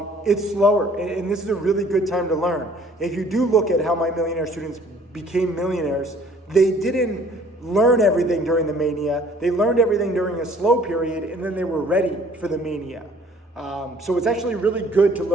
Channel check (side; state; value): both; normal; correlation 0.56